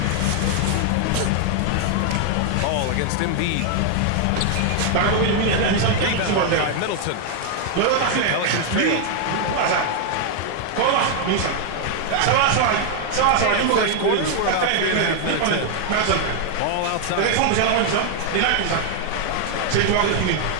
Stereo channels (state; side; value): different; both; correlation 0.00